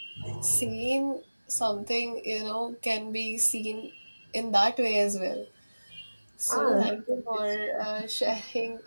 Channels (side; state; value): both; inverted; correlation -1.00